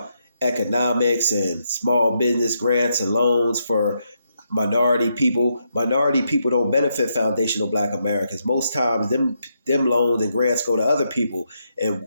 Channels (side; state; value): both; inverted; correlation -0.80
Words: economics and small business grants and loans for minority people. Minority people don't benefit foundational Black Americans. Most times them loans and grants go to other people, and